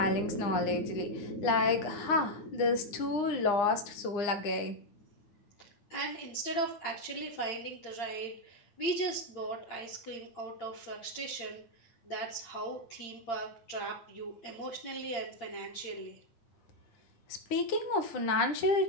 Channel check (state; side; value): late; right; 9.7 ms